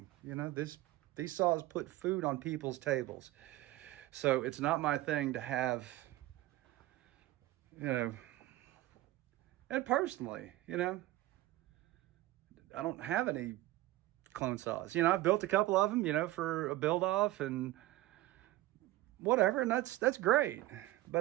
You know, these saws put food on people's tables. So it's not my thing to have, you know, and personally, you know, I don't have any clone saws. You know, I've built a couple of them, you know, for a build off and whatever, and that's great.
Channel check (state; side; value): quieter; left; 16.8 dB